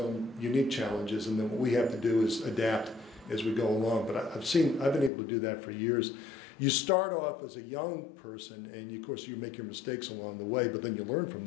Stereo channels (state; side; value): drops out; right; at 5.1 s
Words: unique challenges, and then what we have to do is adapt as we go along. But I've been able to do that for years. You start off as a young person, and of course you make your mistakes along the way, but then you learn from